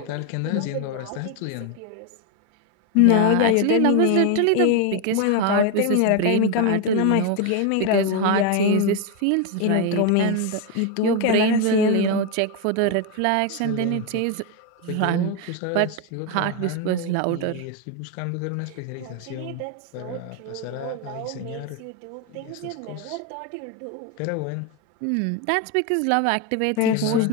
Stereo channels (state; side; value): different; both; correlation 0.02